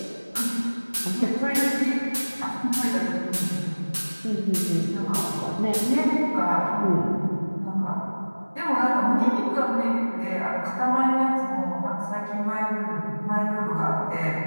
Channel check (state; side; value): inverted; both; correlation -1.00